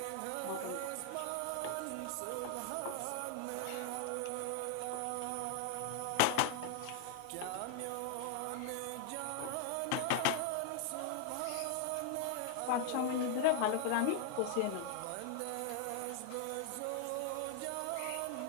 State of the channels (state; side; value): different; both; correlation 0.00